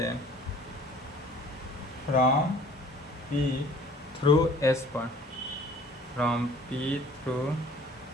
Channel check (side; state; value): both; normal; correlation 0.51